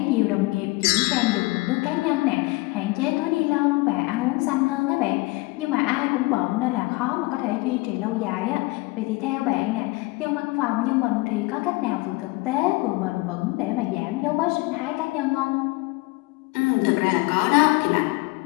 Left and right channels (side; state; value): right; quieter; 23.6 dB